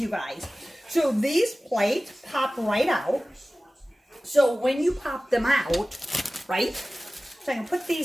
you guys. So these plates pop right out. So when you pop them out, right? So I can put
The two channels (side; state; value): both; normal; correlation 0.97